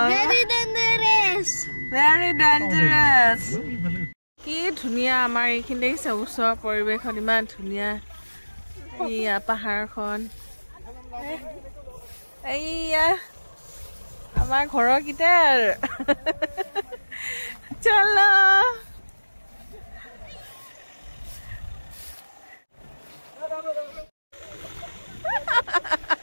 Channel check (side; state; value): both; inverted; correlation -1.00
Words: very dangerous. Very dangerous. কি ধুনিয়া আমাৰ এইখিনি দেখিছে ওচৰৰ পৰিৱেশখন ইমান ধুনিয়া এইয়া পাহাৰখন এইয়া আমাৰ ঘৰৰ কিটাৰ চলো